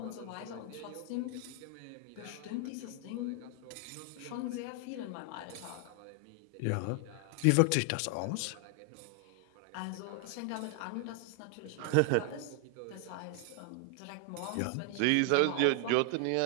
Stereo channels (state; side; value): different; both; correlation 0.00